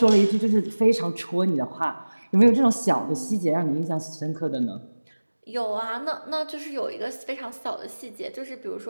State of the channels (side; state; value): both; inverted; correlation -1.00